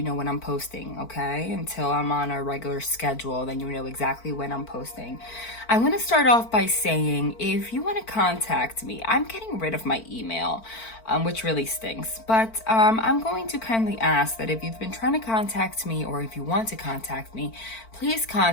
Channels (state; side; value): late; right; 4.5 ms